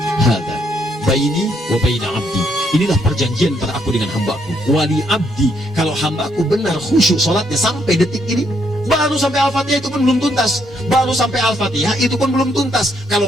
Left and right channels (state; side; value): normal; both; correlation 0.73